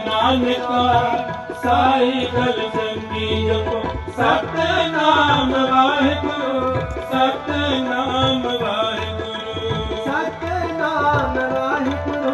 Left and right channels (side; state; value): both; identical; correlation 1.00